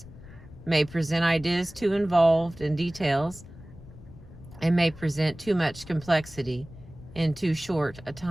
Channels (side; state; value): left; noise; rumble, 18 dB below the sound